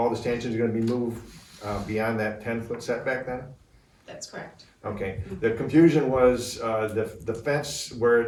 the stanchions are going to be moved beyond that 10-foot setback then? That's correct. Okay, the confusion was the fence where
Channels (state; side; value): identical; both; correlation 1.00